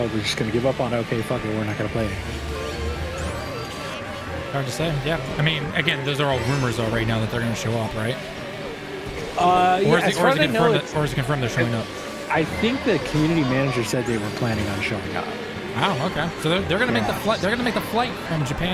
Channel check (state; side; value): identical; both; correlation 1.00